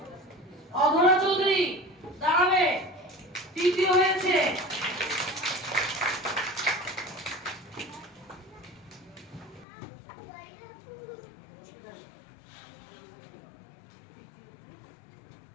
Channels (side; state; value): right; drops out; at 9.7 s